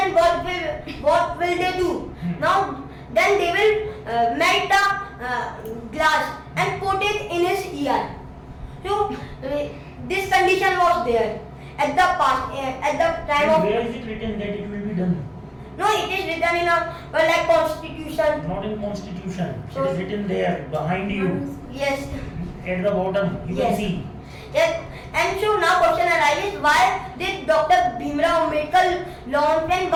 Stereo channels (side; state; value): both; identical; correlation 1.00